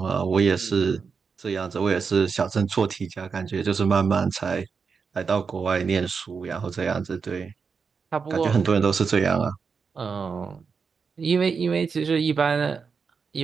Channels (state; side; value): quieter; left; 5.5 dB